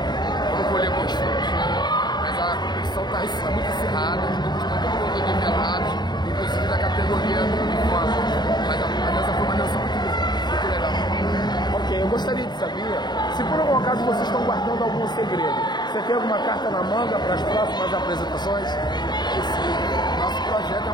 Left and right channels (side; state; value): right; late; 0.21 ms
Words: vamos colher bons frutos, né, mas a competição está muito acirrada, os grupos estão todo mundo nivelados, inclusive da categoria do banco, mas a dança foi uma dança muito legal. Ok, eu gostaria de saber se por algum acaso vocês estão guardando algum segredo. Você tem alguma carta na manga para as próximas apresentações? Sim, nosso projeto é